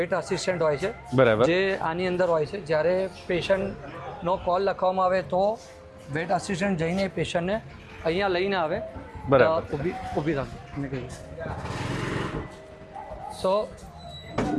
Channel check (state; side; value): identical; both; correlation 1.00